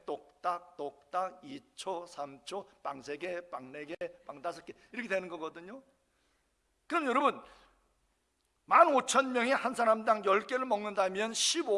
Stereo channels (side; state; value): both; identical; correlation 1.00